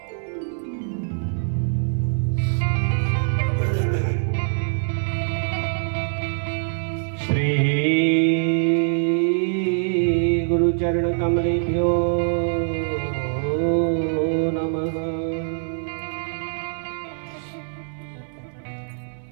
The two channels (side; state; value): left; silent; 59 dB below the other